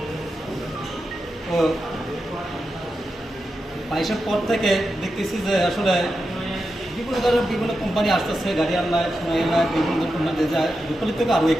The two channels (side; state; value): both; normal; correlation 0.89